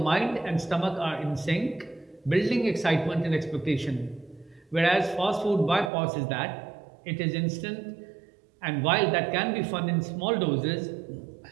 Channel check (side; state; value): left; drops out; at 5.9 s